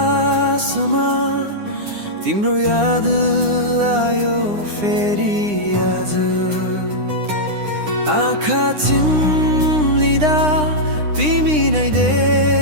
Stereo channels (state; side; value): late; left; 9.8 ms